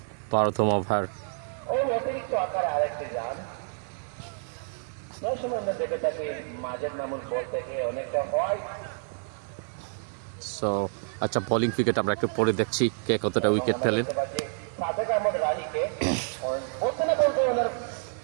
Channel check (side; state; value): left; silent; 59 dB below the other